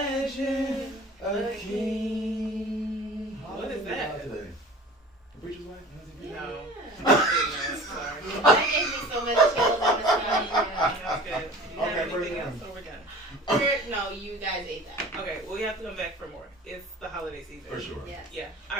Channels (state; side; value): normal; both; correlation 0.42